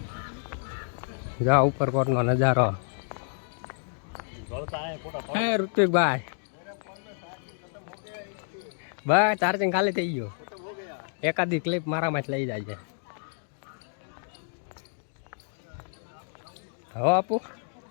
જા ઉપરકોટ નો નજારો હે ઋતિકભાઈ બસ ચાર્જિંગ ખાલી થઈ ગયું એકાદી ક્લિપ મારામાં જ લઈ જાય છે હવે આપું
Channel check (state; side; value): silent; right; 59 dB below the other